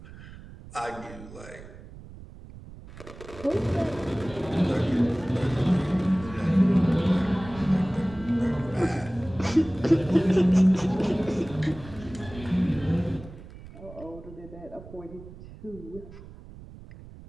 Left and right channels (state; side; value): noise; right; rumble, 17 dB below the sound